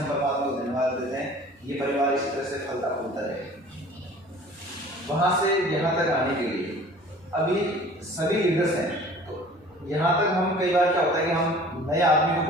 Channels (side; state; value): both; normal; correlation 0.47